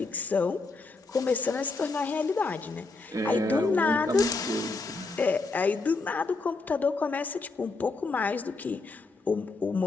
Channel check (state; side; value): quieter; right; 3.7 dB